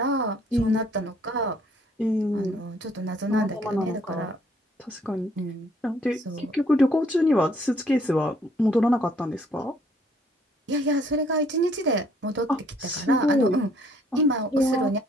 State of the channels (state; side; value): normal; both; correlation 0.63